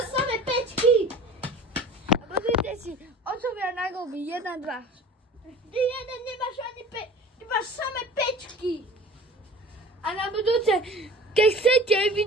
samé pečky. A pozrite si, otcovia na golby, 1, 2. Ty jeden nemáš ani ty máš samé pečky. A na budúce, keď chcete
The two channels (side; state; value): both; normal; correlation 0.41